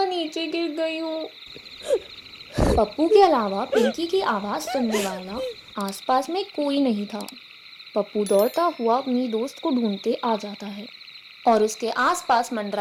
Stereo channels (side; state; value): both; identical; correlation 1.00